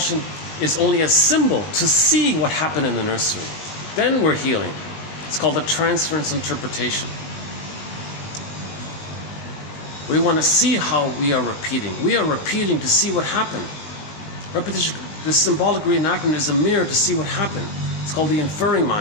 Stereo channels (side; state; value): right; late; 19 ms